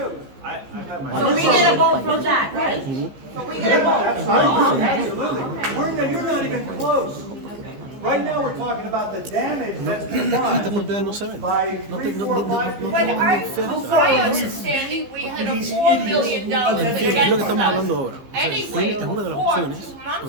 So we get a vote from that, right? So we get a vote. Absolutely. You're not even close. Right now, we're talking about the damage that's been done by 3, 4, 5 people. But my understanding, we had a $4 million against us. Anyway, Es una de las opciones,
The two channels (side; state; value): left; late; 15 ms